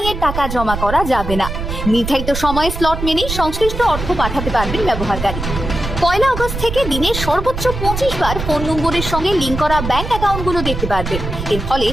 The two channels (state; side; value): noise; right; rumble, 5 dB below the sound